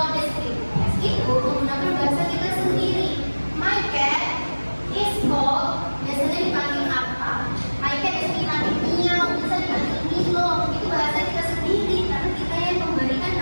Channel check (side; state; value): both; inverted; correlation -1.00